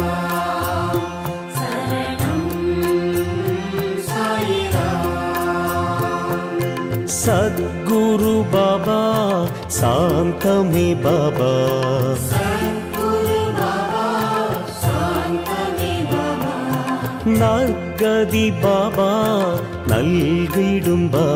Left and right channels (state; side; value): identical; both; correlation 1.00